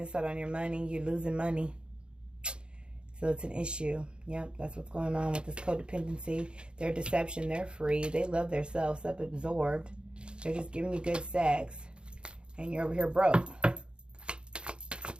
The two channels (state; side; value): late; left; 0.054 ms